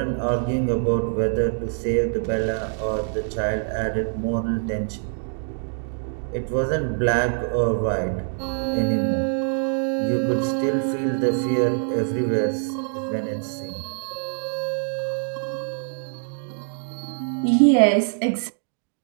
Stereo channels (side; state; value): left; silent; 62 dB below the other